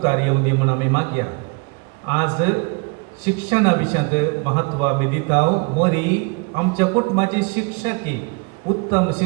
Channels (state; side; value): quieter; left; 31.0 dB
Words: येवं दी म्हणून आमी मागया. आज शिक्षणा विशयांत महत्व आमी दिता. मरी आमच्या कुटुंबाची शिक्षकी उत्तम